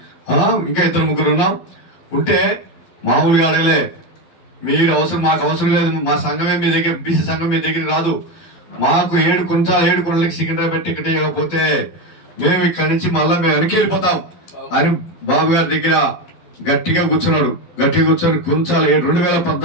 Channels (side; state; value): right; late; 12 ms